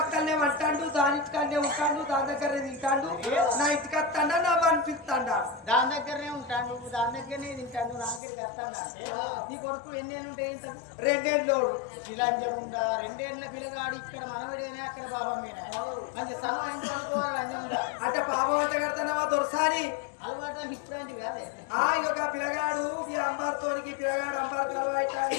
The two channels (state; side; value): drops out; right; at 8.2 s